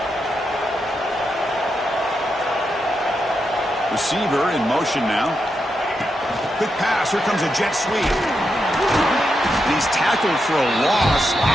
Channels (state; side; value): normal; both; correlation 0.85